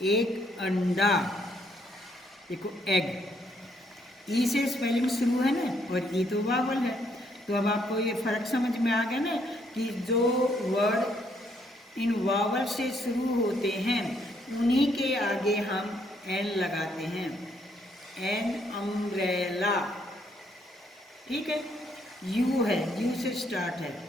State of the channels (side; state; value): both; normal; correlation 0.71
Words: एक अंडा, देखो एग, ई से स्पेलिंग शुरू है ना, और ई तो वावल है। तो अब आपको ये फर्क समझ में आ गया ना, कि जो वर्ड इन वावल से शुरू होते हैं, उन्हीं के आगे हम एन लगाते हैं। एन अम्ब्रेला, ठीक है, यू है, यू से स्टार्ट है।